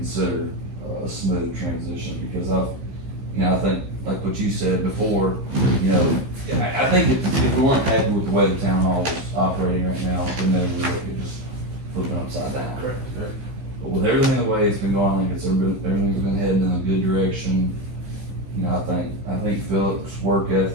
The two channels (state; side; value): late; left; 15 ms